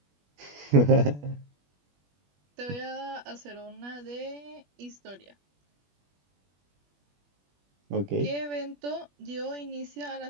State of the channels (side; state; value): left; late; 21 ms